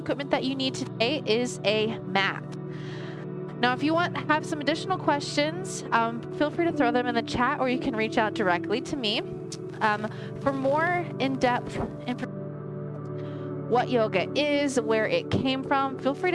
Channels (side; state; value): both; identical; correlation 1.00